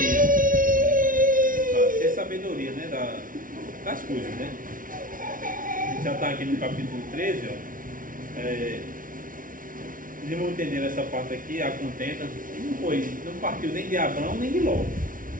Ter sabedoria, né? Das coisas, né? A gente já está aqui no capítulo 13, ó. Eles vão entender essa parte aqui, a contenta. Não partiu nem de Abrão nem de Ló.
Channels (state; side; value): late; left; 0.39 ms